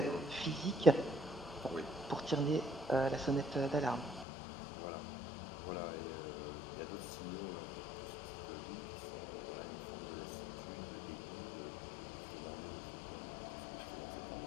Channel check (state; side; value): drops out; right; at 4.2 s